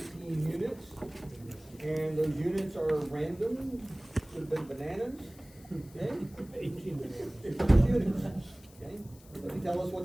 units, and those units are random, could have been bananas, okay? 18 minutes. 18 units, okay? Doesn't tell us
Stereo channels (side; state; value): left; noise; hiss, 24 dB below the sound